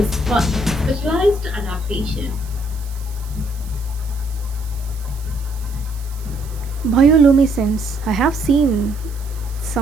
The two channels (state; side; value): noise; right; hiss, 21 dB below the sound